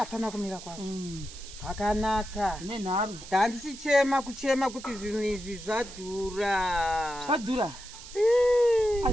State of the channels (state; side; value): noise; right; hiss, 15 dB below the sound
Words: kumira kwazvo. Pakanaka. Nenharo. Ndandichichema kuti zvinhu izvi zvadhura. Zvadhura?